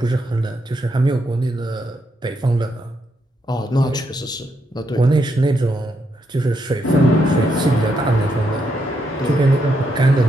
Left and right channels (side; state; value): both; normal; correlation 0.79